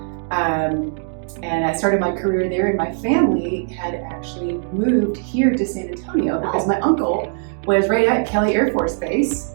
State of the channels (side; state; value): left; silent; 59 dB below the other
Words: And I started my career there, and my family had actually moved here to San Antonio because my uncle was right at Kelly Air Force Base.